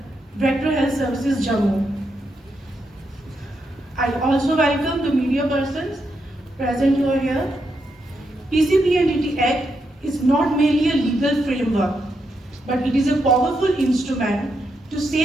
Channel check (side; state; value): both; normal; correlation 0.82